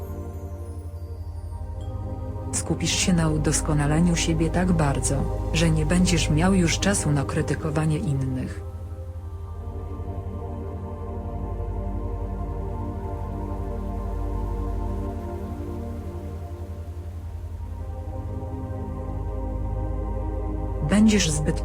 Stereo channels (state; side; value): identical; both; correlation 1.00